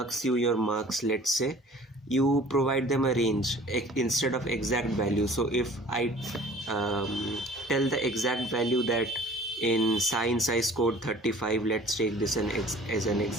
you your marks, let's say, you provide them a range instead of exact value. So if I tell the exact value that in science I scored 35, let's take this as an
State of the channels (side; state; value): both; normal; correlation 0.48